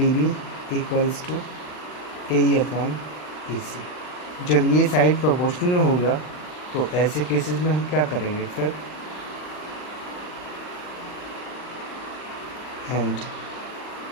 B equals to A E upon A C. जब ये साइड प्रोपोर्शनल में होगा तो ऐसे केसेस में हम क्या करेंगे फिर, and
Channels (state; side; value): late; right; 39 ms